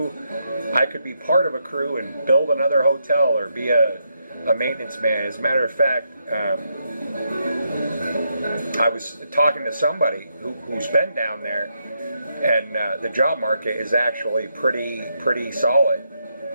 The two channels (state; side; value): inverted; both; correlation -0.80